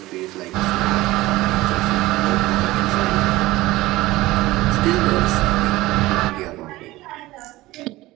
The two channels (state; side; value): quieter; left; 18.4 dB